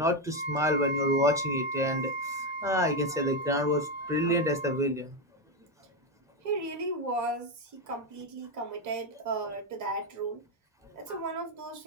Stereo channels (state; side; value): normal; both; correlation 0.08